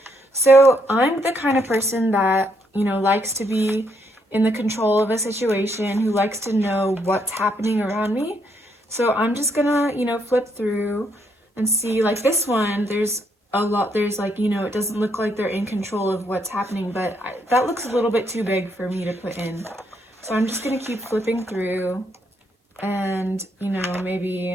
So I'm the kind of person that, you know, likes to be in the control of a situation, who likes to know what's happening around me. So I'm just going to, you know, flip through and see, like this one, there's a lot, there's like, you know, it doesn't look like they're in control of what's happening, but that looks a little bit too big for me to put in. So I'm just gonna keep flipping through, and, you know, maybe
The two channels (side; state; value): both; normal; correlation 0.74